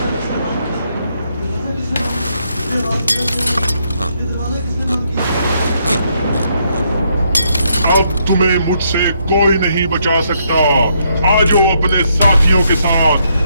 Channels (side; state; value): both; inverted; correlation -0.74